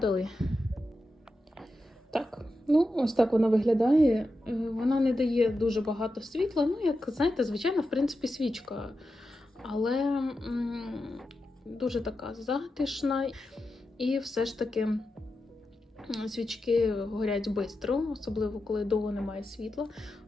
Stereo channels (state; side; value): normal; both; correlation 0.90